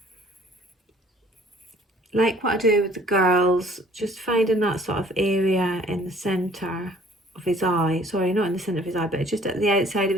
like what I do with the girls, just finding that sort of area in the centre of his eye. Sorry, not in the centre of his eye, but just at the outside of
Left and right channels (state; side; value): normal; both; correlation 0.56